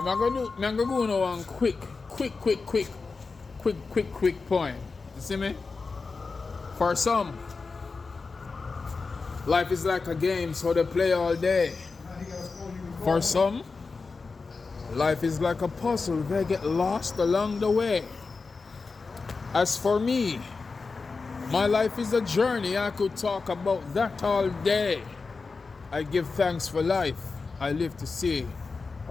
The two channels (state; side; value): quieter; right; 4.3 dB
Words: I'm gonna go on one quick poem. You see me? For some, life is like a game, so they play all day. For some, life is like a puzzle, they get lost along the way. As for me, my life is a journey, I could talk about that all day. I give thanks for life, I live to see